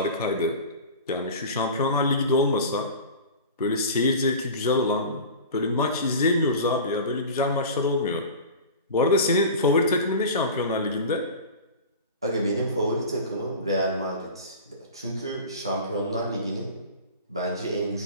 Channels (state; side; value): inverted; both; correlation -0.34